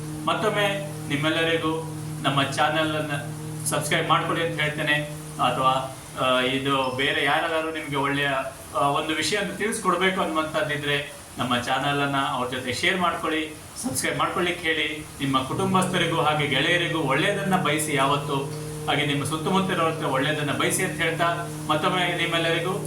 ಮತ್ತೊಮ್ಮೆ ನಿಮ್ಮೆಲ್ಲರಿಗೂ ನಮ್ಮ ಚಾನೆಲ್ ಅನ್ನು ಸಬ್ಸ್ಕ್ರೈಬ್ ಮಾಡ್ಕೊಳ್ಳಿ ಅಂತ ಹೇಳ್ತೇನೆ. ಅಥವಾ ಇದು ಬೇರೆ ಯಾರಾದರೂ ನಿಮಗೆ ಒಳ್ಳೆಯ ಒಂದು ವಿಷಯವನ್ನು ತಿಳಿಸ್ಕೊಡ್ಬೇಕು ಅನ್ನುವಂಥದ್ದಿದ್ರೆ ನಮ್ಮ ಚಾನಲ್ ಅನ್ನ ಅವ್ರ ಜೊತೆ ಶೇರ್ ಮಾಡ್ಕೊಳ್ಳಿ, ಸಬ್ಸ್ಕ್ರೈಬ್ ಮಾಡ್ಕೊಳ್ಳಿಕ್ಕೆ ಹೇಳಿ. ನಿಮ್ಮ ಕುಟುಂಬಸ್ಥರಿಗೂ ಹಾಗೆ ಗೆಳೆಯರಿಗೂ ಒಳ್ಳೆಯದನ್ನ ಬಯಸಿ, ಯಾವತ್ತು ಹಾಗೆ ನಿಮ್ಮ ಸುತ್ತಮುತ್ತ ಒಳ್ಳೆಯದನ್ನ ಬಯಸಿ ಅಂತ ಹೇಳ್ತಾ, ಮತ್ತೊಮ್ಮೆ ನಿಮ್ಮೆಲ್ಲರಿಗೂ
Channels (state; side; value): identical; both; correlation 1.00